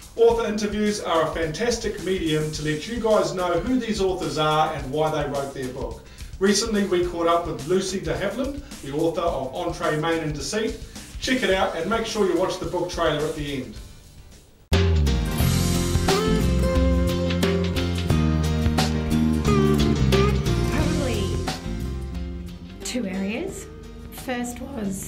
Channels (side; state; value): both; identical; correlation 1.00